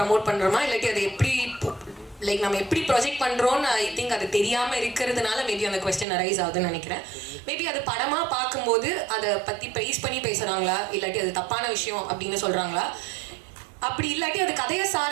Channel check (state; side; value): drops out; left; at 6.1 s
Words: பண்ணுறோமா, இல்லாட்டி அதை எப்படி லைக் நம்ம எப்படி ப்ரொஜெக்ட் பண்ணுறோன்னு ஐ திங்க் அது தெரியாமல் இருக்கிறதுனால மேபி அந்த கொஸ்டின் அரைஸ் ஆகுதுன்னு நினைக்கிறேன். மேபி அது படமாக பார்க்கும்போது அதை பற்றி ப்ரைஸ் பண்ணி பேசுகிறாங்களா, இல்லாட்டி அது தப்பான விஷயம் அப்படின்னு சொல்கிறாங்களா, அப்படி இல்லாட்டி அது கதையை